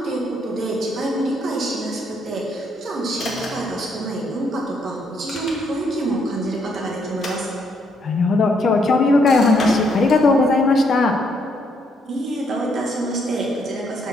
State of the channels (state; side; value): normal; both; correlation 0.72